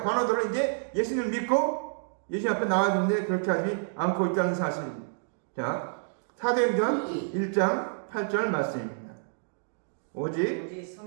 관원들은 이제 예수님을 믿고 예수님 앞에 나와야 되는데 그렇게 하지 않고 있다는 사실입니다. 자, 사도행전 1장 8절 말씀입니다. 오직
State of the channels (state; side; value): silent; left; digital silence